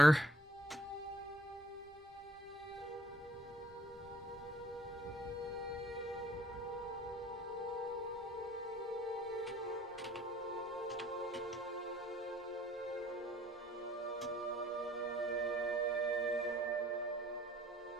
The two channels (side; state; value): both; normal; correlation 0.61